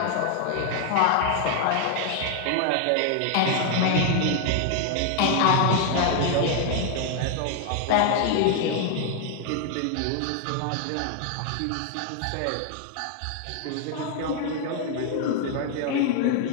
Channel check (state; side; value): different; both; correlation 0.00